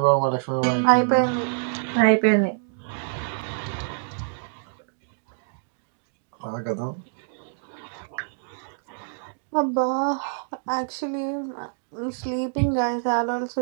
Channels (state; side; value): silent; left; digital silence